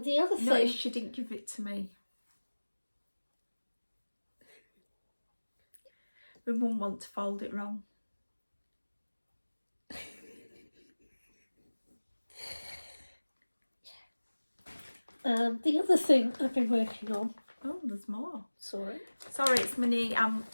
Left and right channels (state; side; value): inverted; both; correlation -1.00